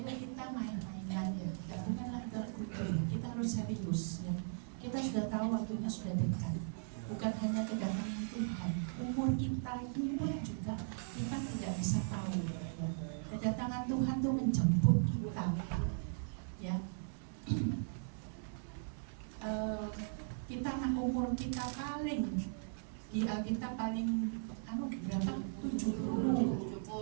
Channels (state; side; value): silent; left; digital silence